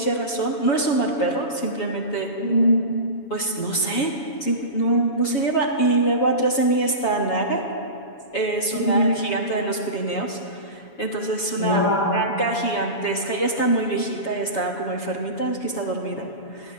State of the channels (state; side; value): late; right; 7.1 ms